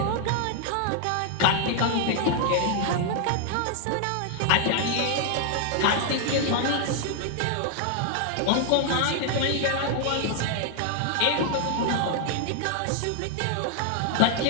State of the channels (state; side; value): different; both; correlation 0.00